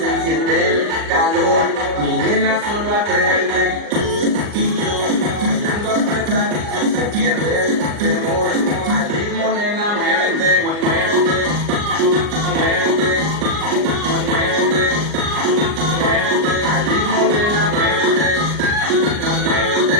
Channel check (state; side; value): late; left; 39 ms